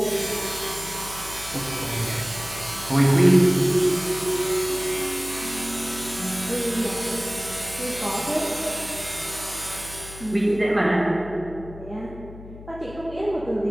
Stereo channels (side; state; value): left; noise; hum, 15 dB below the sound